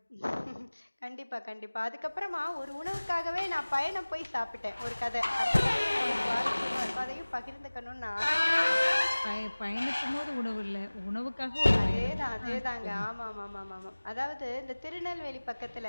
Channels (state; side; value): inverted; both; correlation -1.00